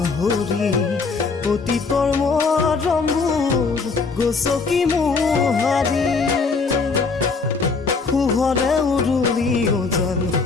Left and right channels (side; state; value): right; quieter; 4.5 dB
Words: অতীতৰ মৰমবোৰ গছকি মোহাৰি শুভৰে উৰুলি ওজন